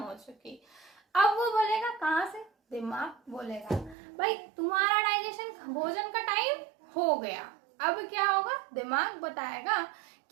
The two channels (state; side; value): drops out; left; at 4.0 s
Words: चुकी। अब वो बोलेगा कहाँ से? दिमाग बोलेगा भाई तुम्हारा डाइजेशन, भोजन का टाइम हो गया। अब क्या होगा? दिमाग बताएगा